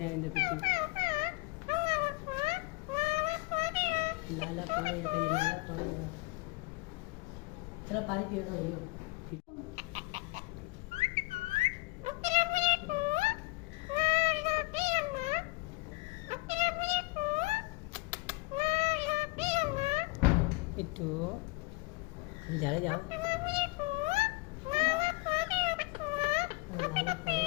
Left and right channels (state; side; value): quieter; right; 24.3 dB